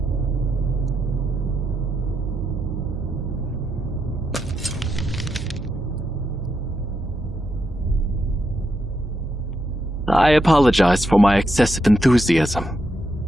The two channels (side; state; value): both; normal; correlation 0.83